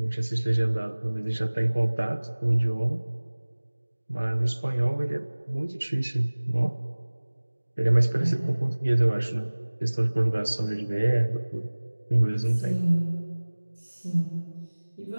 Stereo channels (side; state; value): both; inverted; correlation -1.00